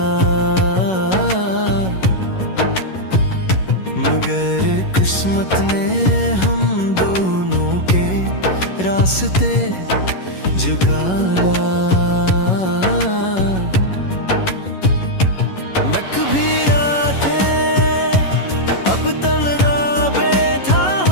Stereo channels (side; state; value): right; late; 11 ms